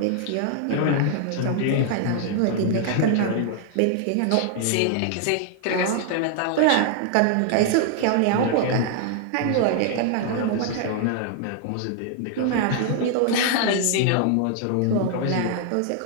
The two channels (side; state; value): both; different; correlation 0.00